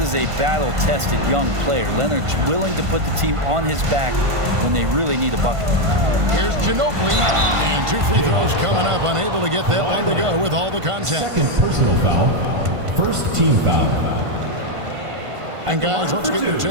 a battle-tested young player. Leonard's willing to put the team on his back when they really need a bucket. Here's Ginobili. And 2 free throws coming up. Unable to get that one to go with all the contact. second personal foul. First team foul. And guys, let's get your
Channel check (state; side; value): late; left; 1.5 ms